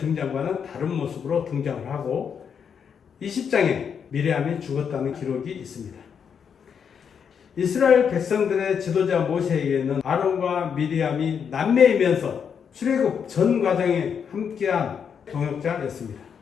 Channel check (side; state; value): right; quieter; 7.2 dB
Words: 다른 모습으로 등장을 하고 20장에 미리암이 죽었다는 기록이 있습니다. 이스라엘 백성들의 지도자 모세에게는 아론과 미리암이 남매이면서 출애굽 전 과정에 함께한 동역자였습니다.